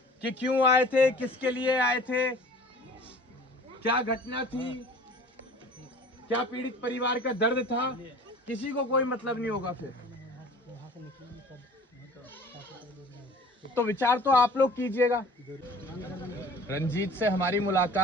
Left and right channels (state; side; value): normal; both; correlation 0.46